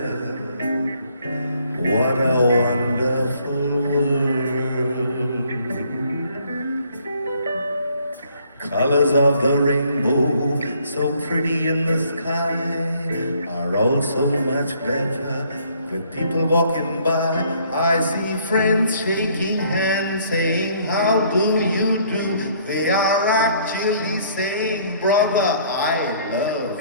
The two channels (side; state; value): both; inverted; correlation -0.63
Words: what a wonderful world. Colors of the rainbow, so pretty in the sky, are also much better with people walking by. I see friends shaking hands, saying, how do you do? They are actually saying, brother, I love